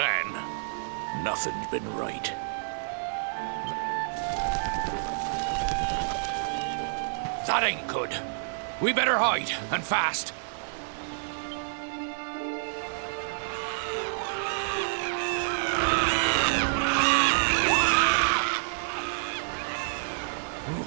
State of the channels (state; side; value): silent; left; digital silence